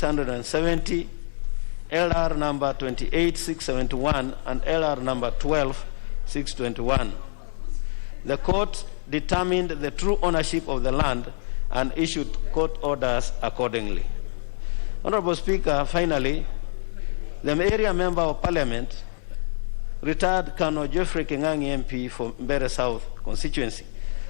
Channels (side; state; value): right; silent; 61 dB below the other